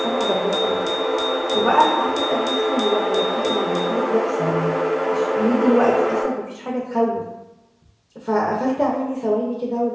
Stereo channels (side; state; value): both; identical; correlation 1.00